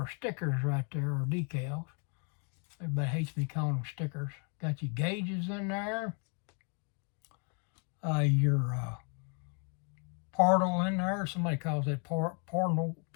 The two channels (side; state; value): right; quieter; 38.5 dB